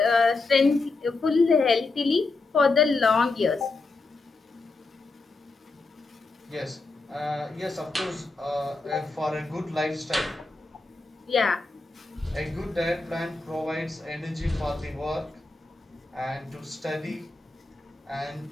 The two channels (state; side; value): quieter; right; 3.5 dB